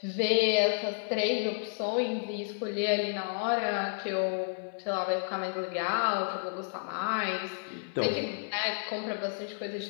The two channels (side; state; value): right; silent; 57 dB below the other